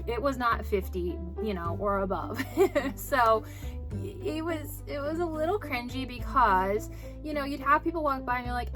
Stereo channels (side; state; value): both; identical; correlation 1.00